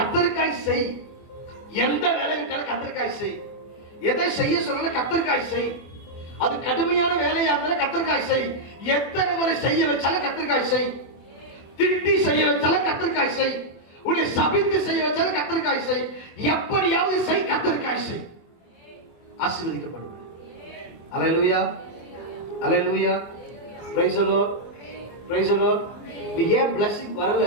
செய். எந்த வேலை விட்டாலும் கர்த்தருக்காய் செய். எதை செய்ய சொன்னால கர்த்தருக்காய் செய். அது கடுமையான வேலையா இருந்தாலும் கர்த்தருக்காய் செய். எத்தனை முறை செய்ய வச்சாலும் கர்த்தருக்காய் செய். திட்டி செய்ய வச்சாலும் கர்த்தருக்காய் செய். உன்னை சபித்து செய்ய வச்சாலும் கர்த்தருக்காய் செய். எப்படியாவது செய், கர்த்தருக்காய் செய். ஆசீர்வதிக்கப்படும். Hallelujah. Hallelujah. Praise the Lord. Praise the Lord. நீ ஏன் blessing வரல?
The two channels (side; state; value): right; late; 24 ms